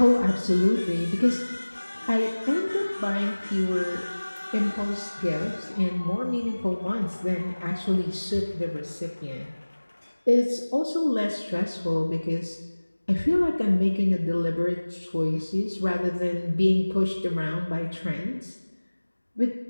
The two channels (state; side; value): inverted; both; correlation -1.00